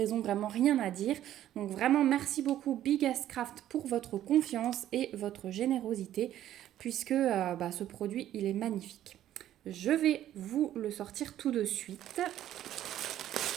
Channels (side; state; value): left; quieter; 12.2 dB